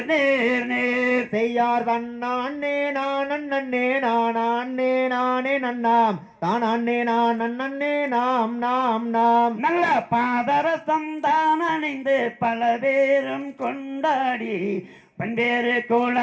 நேர் நேர் செய்யார் தன்னானே நானே நானே நானே நன்னாம் தானே நானே நாம் நாம் நாம் நல்ல பாதரசம் தான் அணிந்து பல பேரும் கொண்டாடி பல்வேறு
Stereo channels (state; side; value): identical; both; correlation 1.00